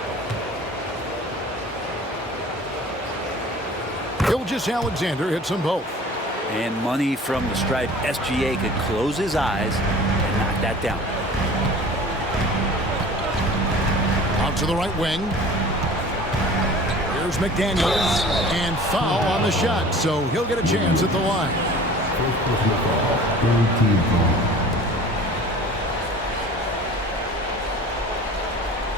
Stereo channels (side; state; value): both; normal; correlation 0.44